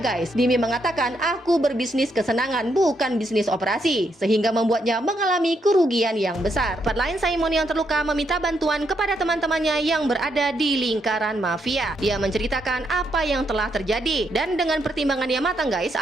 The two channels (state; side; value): normal; both; correlation 0.78